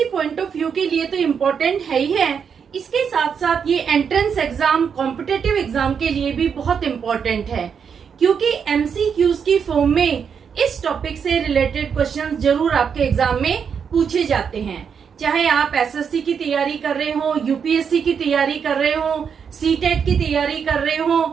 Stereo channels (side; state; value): left; quieter; 6.9 dB